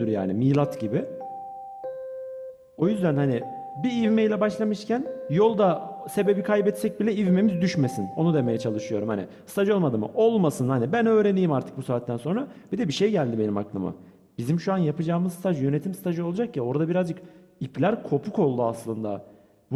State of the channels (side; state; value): both; identical; correlation 1.00